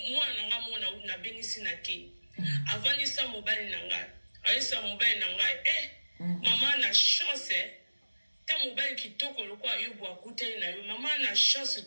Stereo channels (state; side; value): inverted; both; correlation -1.00